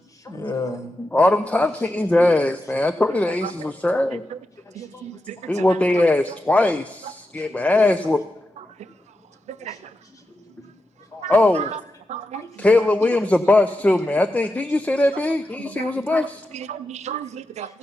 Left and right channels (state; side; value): normal; both; correlation 0.89